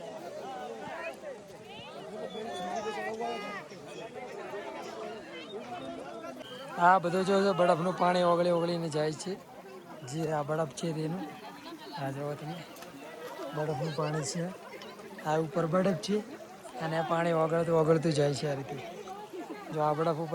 આ બધું જો બરફનું પાણી ઓગળી ઓગળીને જાય છે, જે આ બરફ છે તેનું આ જોવો તમે બરફનું પાણી છે, આ ઉપર બરફ છે અને આ પાણી ઓગળતું ઓગળતું જાય છે આ રીતે। જો આ બરફ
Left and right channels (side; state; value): both; identical; correlation 1.00